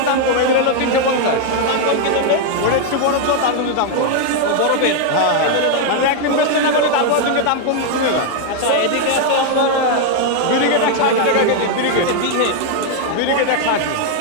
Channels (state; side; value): different; both; correlation 0.00